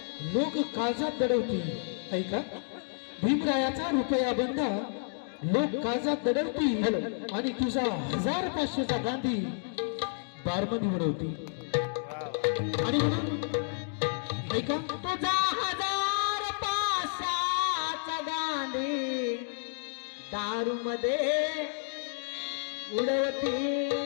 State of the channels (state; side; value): silent; right; digital silence